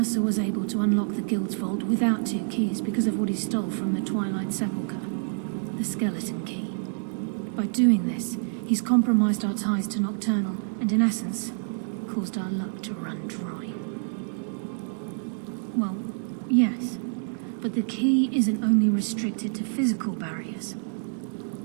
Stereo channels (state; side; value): silent; left; digital silence